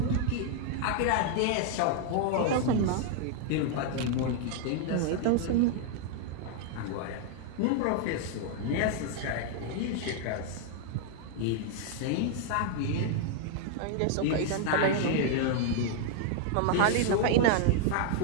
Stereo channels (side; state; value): both; different; correlation 0.00